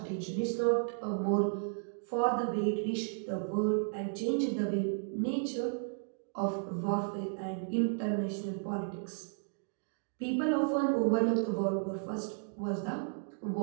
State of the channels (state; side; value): silent; left; digital silence